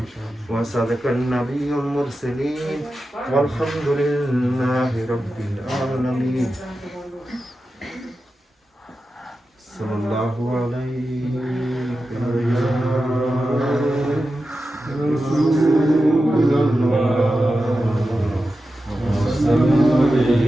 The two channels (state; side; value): normal; both; correlation 0.92